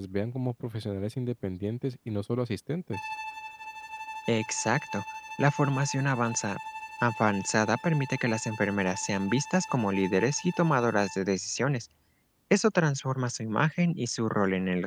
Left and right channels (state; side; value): identical; both; correlation 1.00